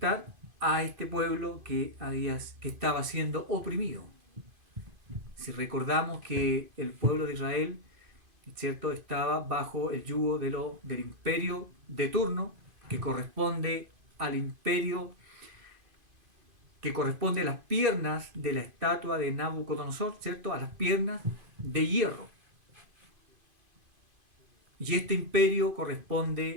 a este pueblo que estaba siendo oprimido. Si recordamos que el pueblo de Israel, ¿cierto?, estaba bajo el yugo del imperio de turno, que corresponde al imperio, que corresponde a las piernas de la estatua de Nabucodonosor, ¿cierto?, a las piernas de hierro. Y este imperio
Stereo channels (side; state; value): left; late; 2.5 ms